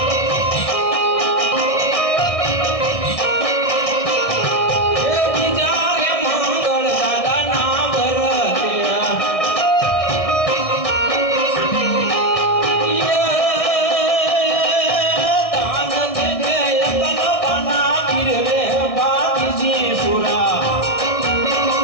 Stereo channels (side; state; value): right; late; 1.6 ms